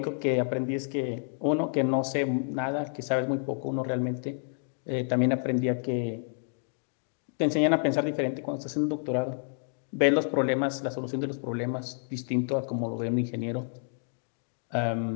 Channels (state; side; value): silent; right; 57 dB below the other